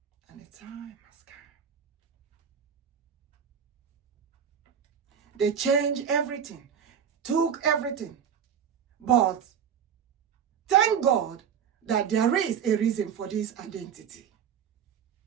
And the time has come. They changed everything, took everything. But thank God that there is a reason for this identity.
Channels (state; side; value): quieter; left; 8.0 dB